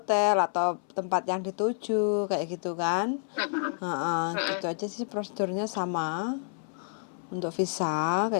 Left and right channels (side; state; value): right; silent; 58 dB below the other